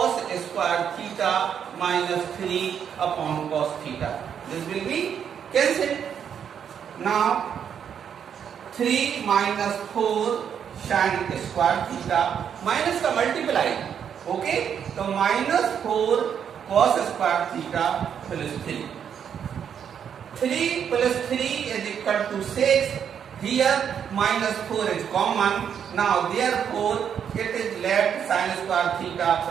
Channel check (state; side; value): quieter; left; 8.1 dB